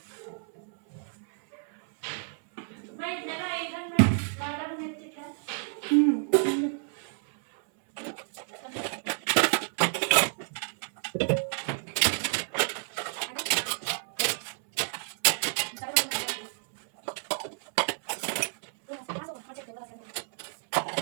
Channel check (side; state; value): left; silent; 58 dB below the other